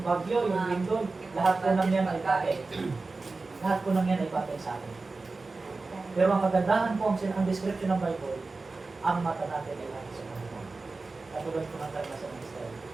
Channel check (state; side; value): quieter; left; 3.7 dB